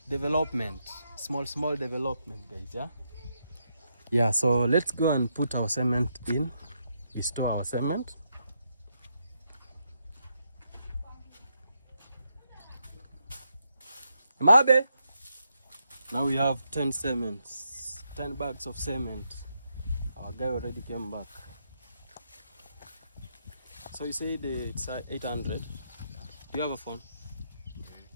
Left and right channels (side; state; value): both; inverted; correlation -0.81